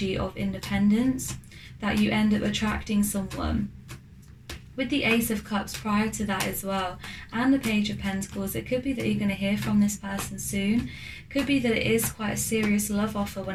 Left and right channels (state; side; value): identical; both; correlation 1.00